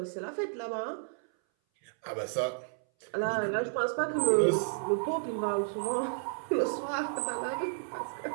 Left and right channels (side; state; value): left; silent; 56 dB below the other